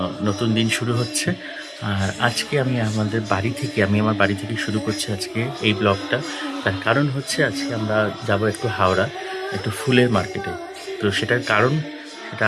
নতুন দিন শুরু হচ্ছে। আর আজকে আমি আমার বাড়ি থেকে শুরু করছি আজকে এই ব্লগটা। তার কারণ হচ্ছে আজকে আমরা যাব একটু হাওড়া, একটু ফুলের মার্কেটে। তো সেটার কারণ সেটা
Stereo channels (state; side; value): identical; both; correlation 1.00